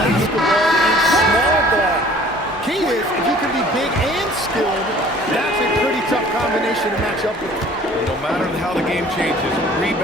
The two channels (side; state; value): both; normal; correlation 0.52